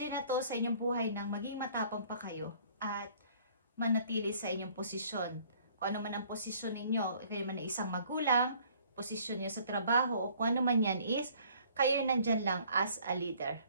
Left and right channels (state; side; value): inverted; both; correlation -0.57